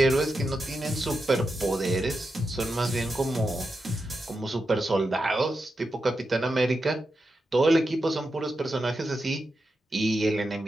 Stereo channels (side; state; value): both; normal; correlation 0.88